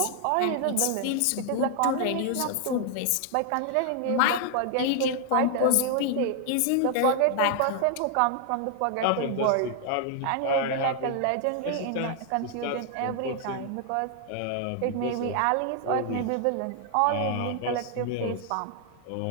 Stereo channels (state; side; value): different; both; correlation 0.00